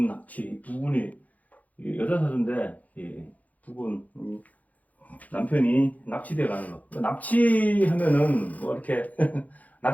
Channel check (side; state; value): right; late; 0.076 ms